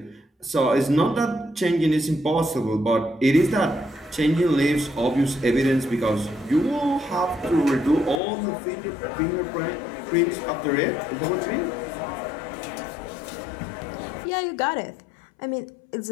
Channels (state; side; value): drops out; right; at 8.2 s